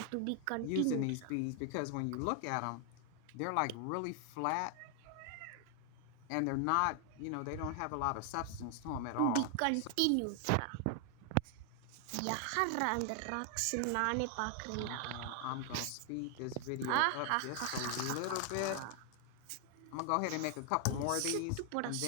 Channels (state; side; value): different; both; correlation 0.00